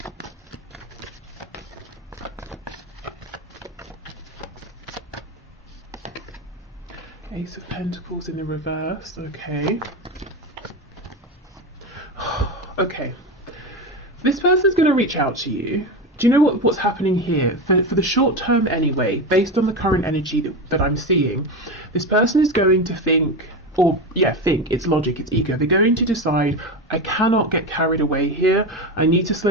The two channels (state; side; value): normal; both; correlation 0.19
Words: Ace of Pentacles in the reverse, okay. Okay, this person's going to reach out to you. Do you know what's happening here? For the short term anyway, based on the current energy that I'm seeing, this person is going to think, it's logic, it's ego. They're going to decide, I cannot get carried away here. I need to